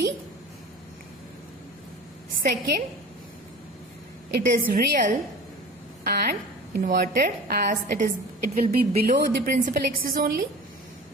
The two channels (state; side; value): normal; both; correlation 0.38